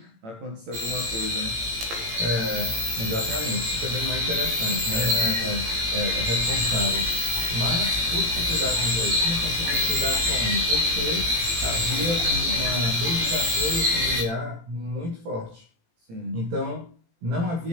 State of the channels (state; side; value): late; left; 18 ms